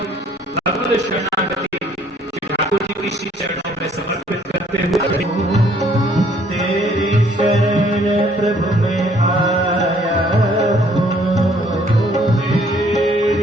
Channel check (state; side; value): normal; both; correlation 0.62